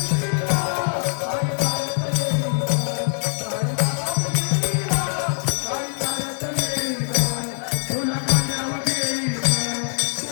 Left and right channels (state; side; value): silent; right; digital silence